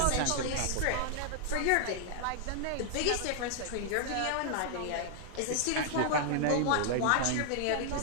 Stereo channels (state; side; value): different; both; correlation 0.00